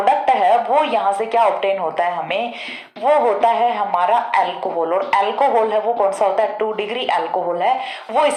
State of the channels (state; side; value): identical; both; correlation 1.00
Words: है वो यहाँ से क्या ऑब्टेन होता है हमें, वो होता है हमारा अल्कोहल। और अल्कोहल है वो कौन सा होता है, 2 डिग्री अल्कोहल है, वो